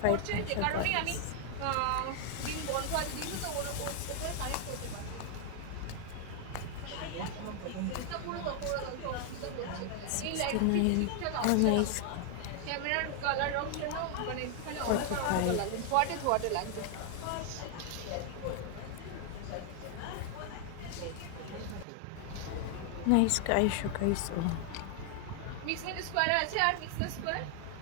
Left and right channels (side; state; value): both; different; correlation 0.00